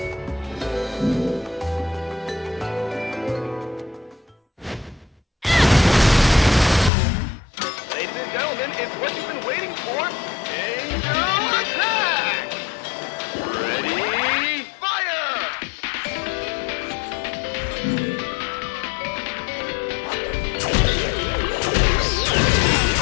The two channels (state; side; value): drops out; right; at 6.9 s